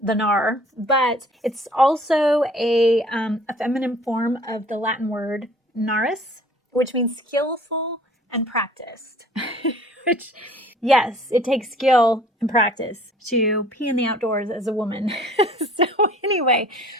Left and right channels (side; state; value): both; normal; correlation 0.52